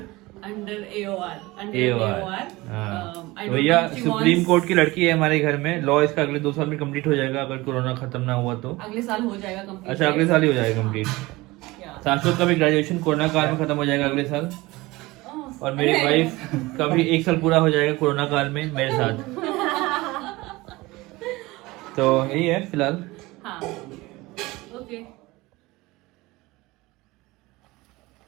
AOR. हाँ. भैया सुप्रीम कोर्ट की लड़की है हमारे घर में. लॉ इसका अगले 2 साल में कंप्लीट हो जाएगा, अगर कोरोना खत्म ना हुआ तो. अगले साल हो जाएगा कंप्लीट. अच्छा, अगले साल ही हो जाएगा कंप्लीट. शाश्वत का भी ग्रेजुएशन कोरोना काल में खत्म हो जाएगा अगले साल. और मेरी वाइफ का भी 1 साल पूरा हो जाएगा कोरोना काल में मेरे साथ. तो यही है फिलहाल. हाँ, okay.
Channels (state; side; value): quieter; left; 20.9 dB